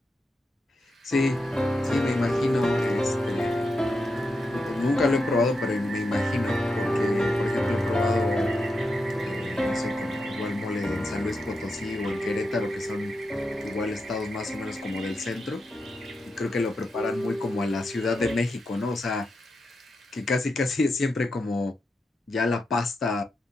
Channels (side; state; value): both; normal; correlation 0.86